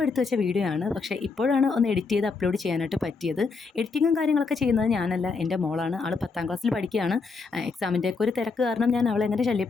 എടുത്ത് വെച്ച വീഡിയോ ആണ്. പക്ഷേ ഇപ്പോഴാണ് ഒന്ന് എഡിറ്റ് ചെയ്ത് അപ്ലോഡ് ചെയ്യാനായിട്ട് പറ്റിയത്. എഡിറ്റിങ്ങും കാര്യങ്ങളൊക്കെ ചെയ്യുന്നത് ഞാനല്ല, എൻ്റെ മോളാണ്. ആൾ 10ാം ക്ലാസ്സിൽ പഠിക്കുകയാണ്. എക്സാമിൻ്റെ ഒക്കെ ഒരു തിരക്ക് കാരണം ഞാൻ അവളെ അങ്ങനെ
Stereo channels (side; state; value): right; quieter; 4.5 dB